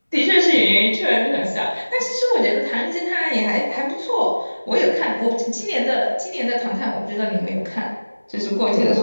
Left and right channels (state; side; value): inverted; both; correlation -1.00